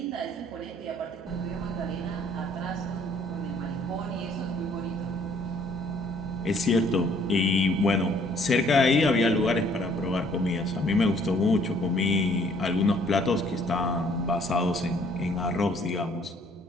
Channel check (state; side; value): normal; both; correlation 0.61